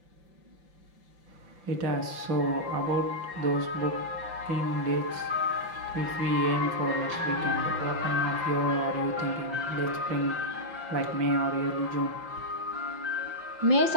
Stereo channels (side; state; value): left; late; 5.8 ms